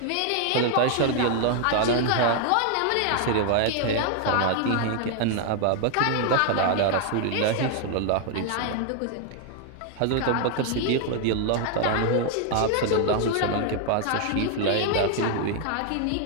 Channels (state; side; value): different; both; correlation 0.00